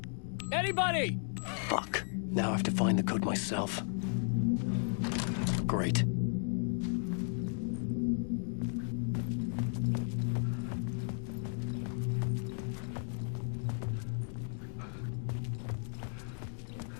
Anybody? Fuck. Now I have to find the code myself. Great.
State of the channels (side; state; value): right; silent; 55 dB below the other